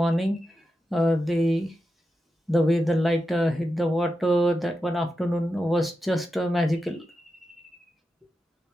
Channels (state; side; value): normal; both; correlation 0.89